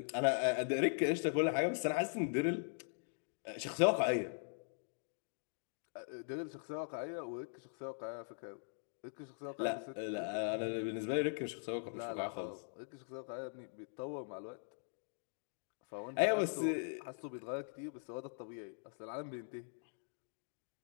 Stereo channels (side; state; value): right; silent; digital silence